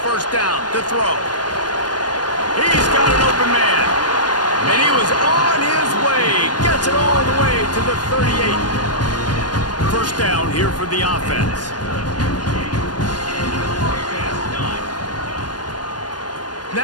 first down to throw. He's got an open man. And he was on his way. Gets it all the way to the 38. First down here for the offense.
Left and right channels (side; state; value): right; late; 0.69 ms